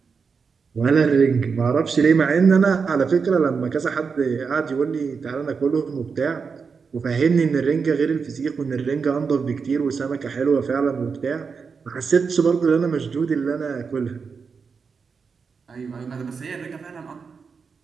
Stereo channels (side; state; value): left; quieter; 5.5 dB